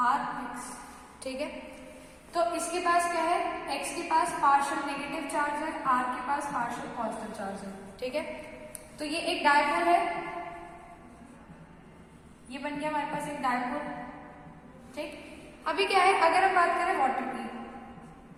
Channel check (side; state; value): both; identical; correlation 1.00